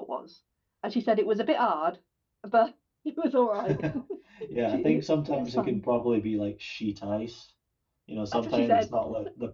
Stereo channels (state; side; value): identical; both; correlation 1.00